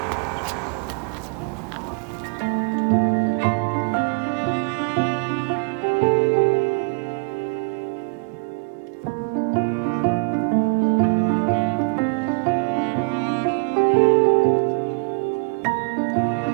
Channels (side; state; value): left; quieter; 35.8 dB